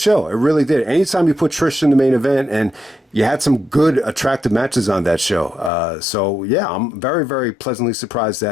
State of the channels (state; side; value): drops out; right; at 5.7 s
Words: It really did. Anytime you put Trish in the main event, and you had some good, attractive matches on that show. I'm very, very pleasantly surprised